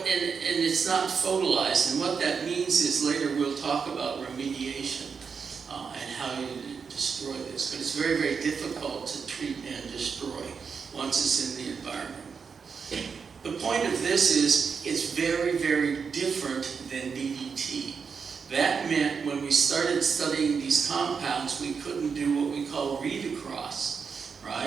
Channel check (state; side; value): quieter; left; 5.9 dB